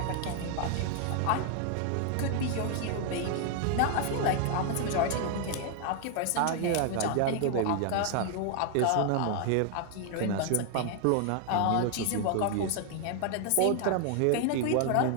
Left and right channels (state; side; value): different; both; correlation 0.00